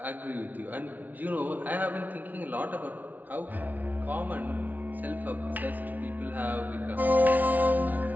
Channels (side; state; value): left; late; 0.079 ms